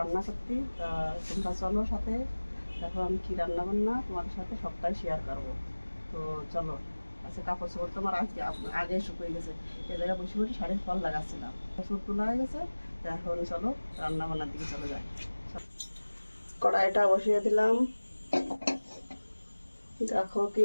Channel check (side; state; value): both; inverted; correlation -1.00